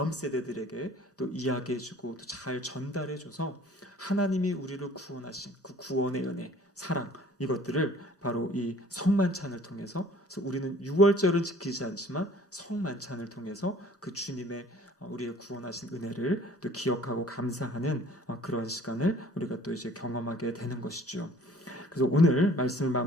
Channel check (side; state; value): both; normal; correlation 0.52